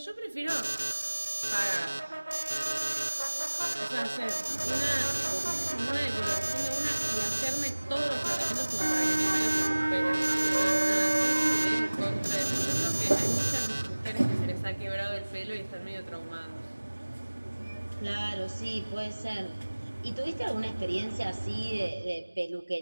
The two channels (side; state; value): both; inverted; correlation -1.00